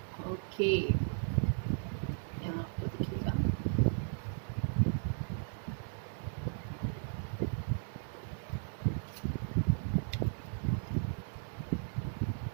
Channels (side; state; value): left; silent; digital silence